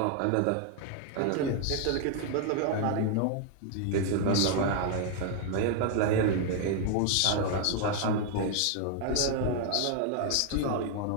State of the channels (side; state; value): both; different; correlation 0.00